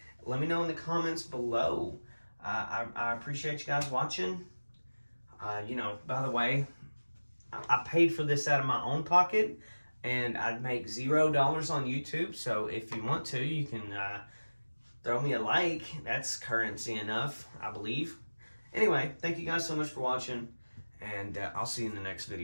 Let me know in the comments below. I appreciate you guys watching. By the way, I paid for this out of my own pocket, and I'd make $0 on YouTube. So if you want to, you can throw me a like. That's currency enough, I believe. Anyway, thank you guys so much for watching, and I'll see you in the next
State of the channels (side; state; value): both; inverted; correlation -1.00